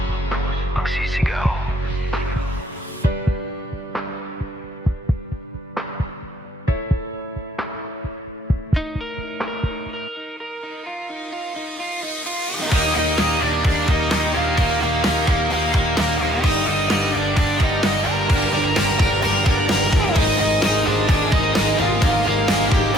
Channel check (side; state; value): both; normal; correlation 0.64